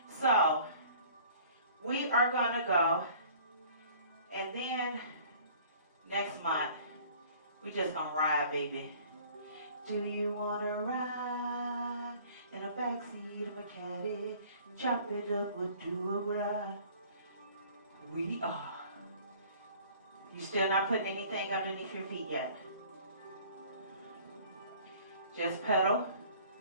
So, we are going to go, and then next month, we just going to ride, baby. Do you want to ride in the backseat of a caddy? Chop it up or do a ride? We are. You still not putting anything underneath your feet yet. Just pedal.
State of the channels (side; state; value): both; inverted; correlation -0.51